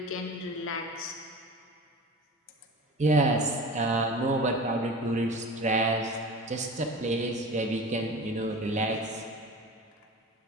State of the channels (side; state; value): both; normal; correlation 0.35